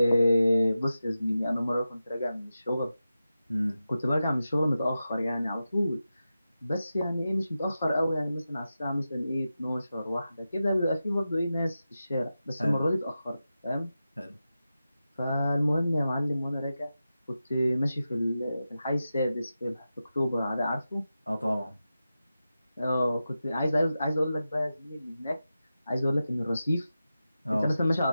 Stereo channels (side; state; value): both; inverted; correlation -0.92